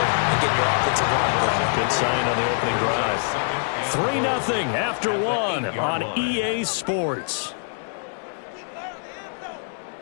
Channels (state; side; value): silent; right; 63 dB below the other